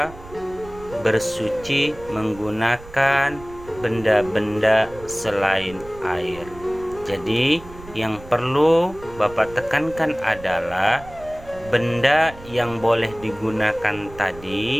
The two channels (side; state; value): right; noise; rumble, 18 dB below the sound